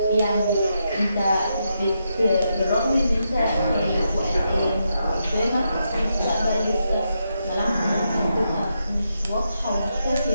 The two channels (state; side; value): inverted; both; correlation -0.83